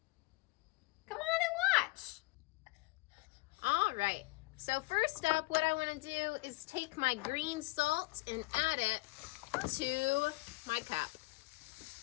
Come on and watch. All right, so first up, what I wanna do is take my green salt and add it to my cup.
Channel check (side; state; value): right; quieter; 24.2 dB